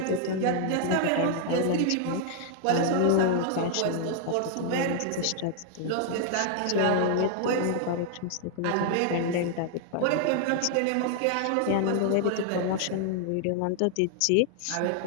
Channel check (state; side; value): different; both; correlation 0.00